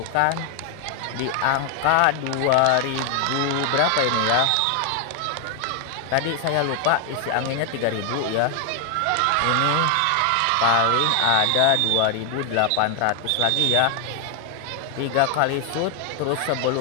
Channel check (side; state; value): both; different; correlation 0.00